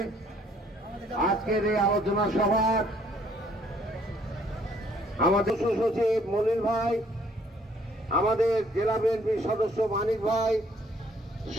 আজকের এই আলোচনা সভার আমাদের সচিব মনির ভাই, আমাদের জেলা বিএনপির সদস্য মানিক ভাই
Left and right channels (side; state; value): both; normal; correlation 0.63